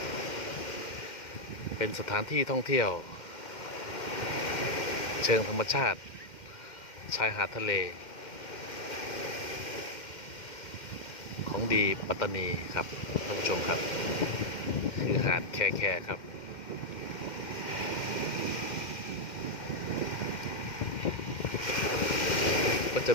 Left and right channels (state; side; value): late; right; 2.1 ms